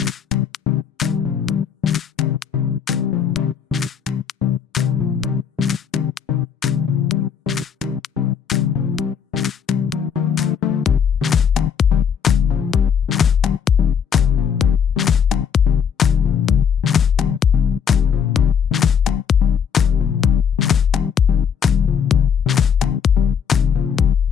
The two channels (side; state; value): right; quieter; 7.4 dB